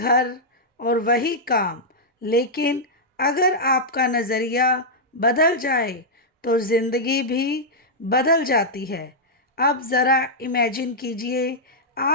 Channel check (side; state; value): both; normal; correlation -0.07